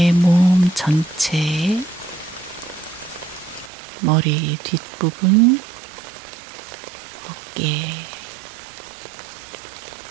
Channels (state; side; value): drops out; left; at 3.7 s